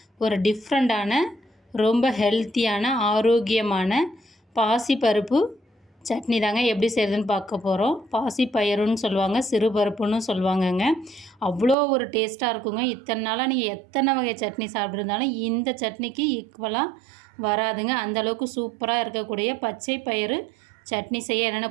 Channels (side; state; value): left; drops out; at 11.8 s